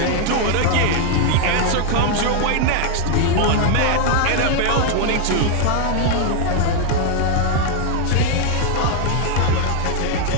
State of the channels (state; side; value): different; both; correlation 0.00